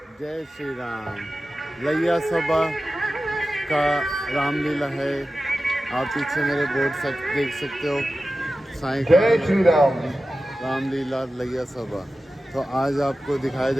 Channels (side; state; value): both; normal; correlation 0.94